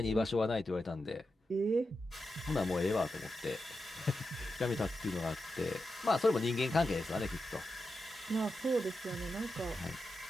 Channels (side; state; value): both; normal; correlation 0.89